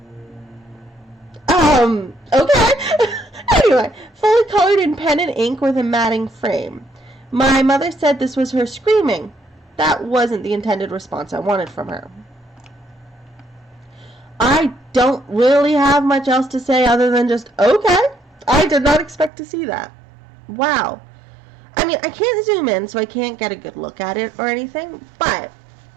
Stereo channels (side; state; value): left; drops out; at 19.3 s